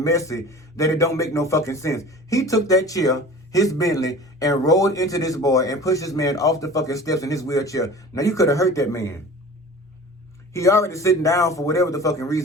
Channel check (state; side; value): normal; both; correlation 0.40